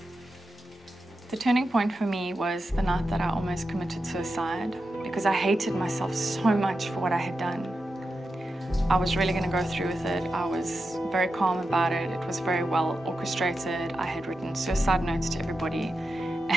The turning point for me was the night that I almost committed suicide because I hated myself so much for what I had done. I was really going to go through with it. I was very calm about it. It was very well orchestrated. I had written suicide notes to everybody,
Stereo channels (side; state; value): both; normal; correlation 0.90